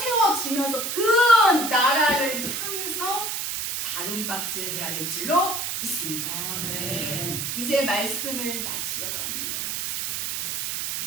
그 나라를 향해서 다른 박질을 해야 될 줄로 믿습니다. 아멘. 이제 말씀을 마치려고 합니다.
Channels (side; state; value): right; noise; hiss, 2 dB below the sound